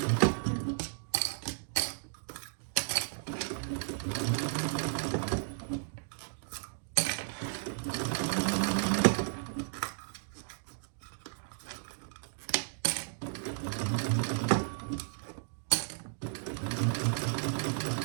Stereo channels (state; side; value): silent; left; digital silence